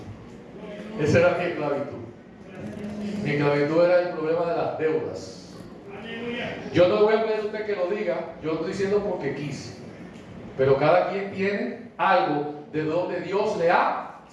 Esa era mi esclavitud. Mi esclavitud era el problema de las deudas. Yo no le voy a pedir a usted que lo diga, yo lo estoy diciendo porque quise. Pero cada quien tiene algo de donde Dios le ha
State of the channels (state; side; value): identical; both; correlation 1.00